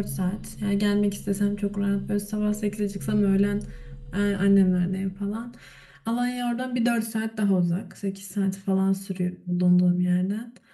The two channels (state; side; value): identical; both; correlation 1.00